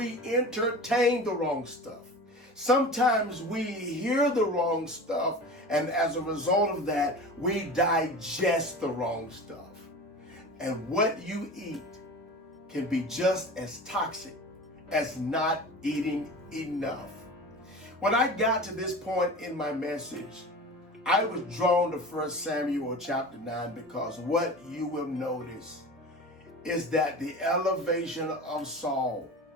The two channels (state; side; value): normal; both; correlation 0.34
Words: entertain the wrong stuff. Sometimes we hear the wrong stuff, and as a result of that, we digest the wrong stuff. And what you eat can be just as toxic as not eating enough. When I got to this point in my message, I was drawn to 1 Samuel chapter 9 because what you will notice is that the elevation of Saul